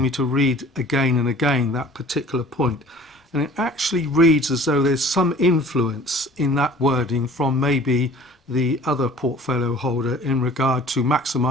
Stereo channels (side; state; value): both; normal; correlation 0.48